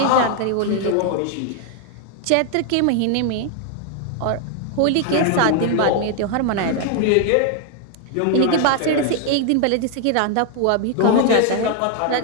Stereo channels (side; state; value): both; different; correlation 0.00